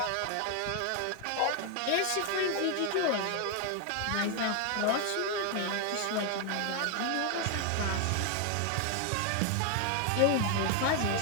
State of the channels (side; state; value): both; different; correlation 0.01